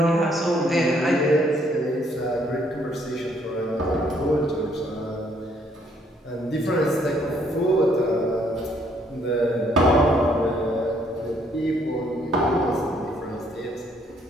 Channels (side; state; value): both; normal; correlation 0.67